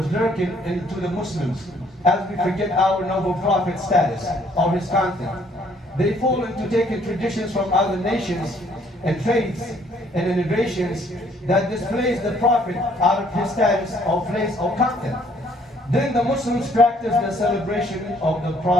lurking into the Muslims as we forget our noble prophet status or his content. They fall into taking traditions from other nations and faiths and innovations that displays the prophet out of his status or place or content. Then the Muslims practice the celebration of the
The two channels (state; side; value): normal; both; correlation 0.63